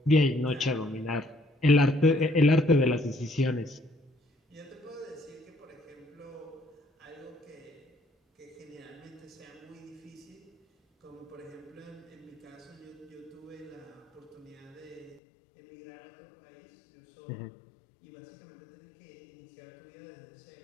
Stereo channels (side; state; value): right; drops out; at 15.2 s